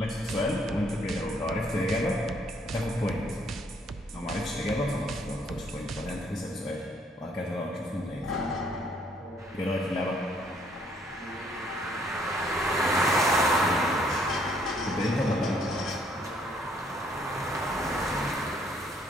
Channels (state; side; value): normal; both; correlation 0.66